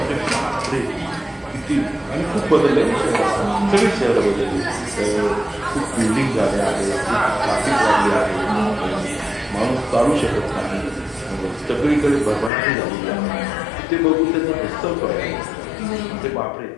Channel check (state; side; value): drops out; right; at 12.5 s